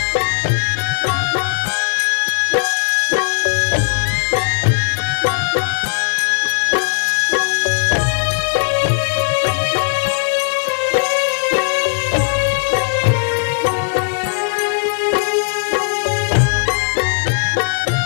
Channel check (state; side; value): silent; right; digital silence